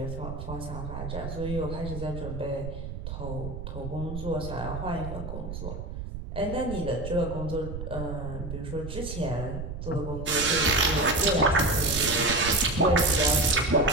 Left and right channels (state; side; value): noise; right; rumble, 7 dB below the sound